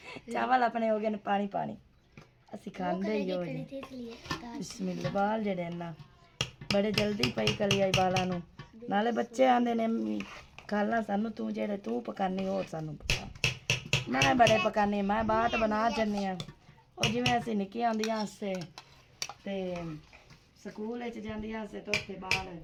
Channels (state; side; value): identical; both; correlation 1.00